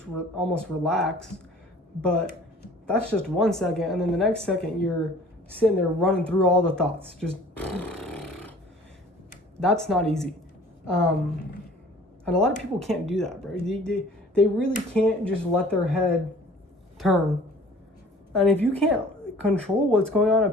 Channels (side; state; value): both; normal; correlation 0.50